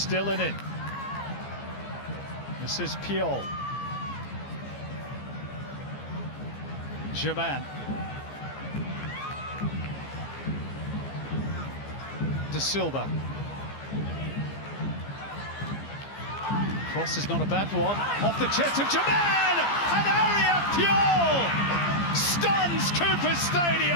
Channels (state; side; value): late; right; 15 ms